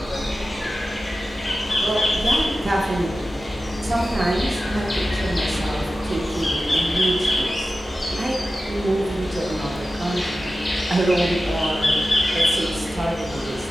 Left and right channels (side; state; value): both; normal; correlation 0.94